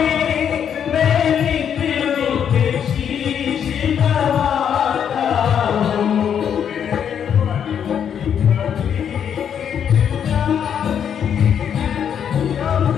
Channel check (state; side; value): quieter; right; 8.4 dB